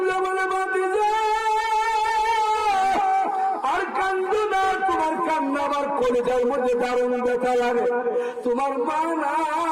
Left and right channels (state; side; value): identical; both; correlation 1.00